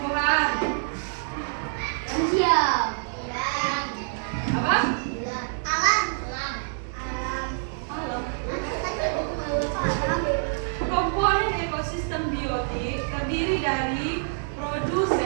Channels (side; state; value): left; silent; 59 dB below the other